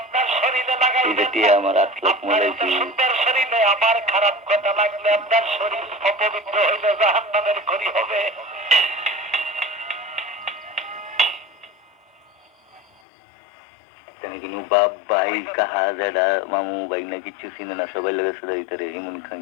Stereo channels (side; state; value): right; drops out; at 12.9 s